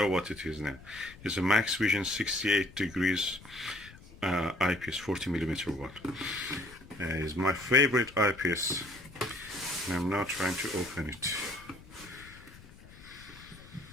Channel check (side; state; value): left; noise; rumble, 20 dB below the sound